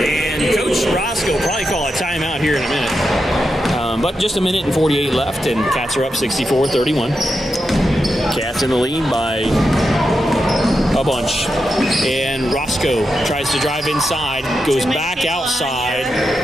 Coach Roscoe probably call a timeout here in a minute. But just a minute and 48 left, and Cats are up 64-31. Cats in the lead by a bunch. And Roscoe tries to drive inside, goes back outside,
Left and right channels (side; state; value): both; normal; correlation 0.87